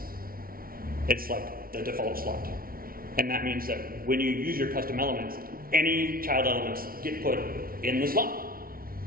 it's like the default slot. And that means that when you use your custom elements, any child elements get put in the slot.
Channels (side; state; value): left; late; 0.43 ms